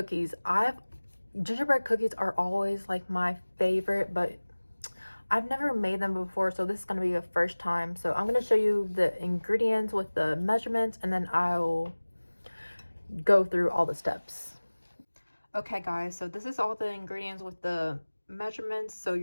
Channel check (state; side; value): inverted; both; correlation -1.00